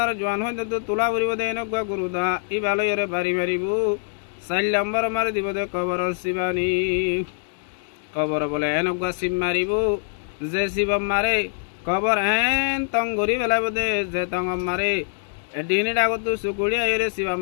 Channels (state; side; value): silent; right; digital silence